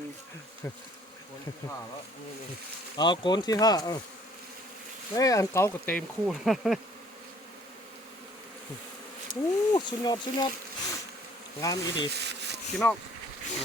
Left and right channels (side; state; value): both; normal; correlation 0.58